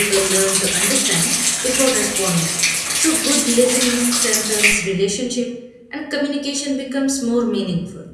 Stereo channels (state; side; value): identical; both; correlation 1.00